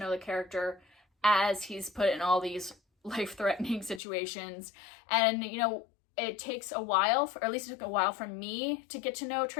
the character as he's put in all these life-threatening situations. And, you know, it takes a while, or at least it took a while for me to get to know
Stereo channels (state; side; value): drops out; right; at 4.0 s